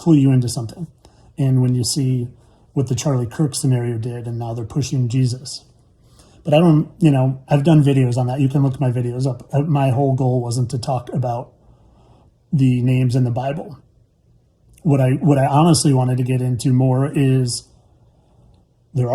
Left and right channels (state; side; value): identical; both; correlation 1.00